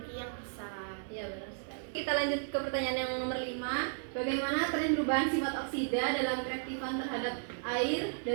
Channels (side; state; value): left; silent; digital silence